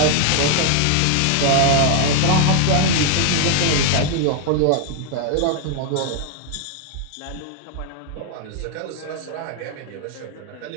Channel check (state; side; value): different; both; correlation 0.00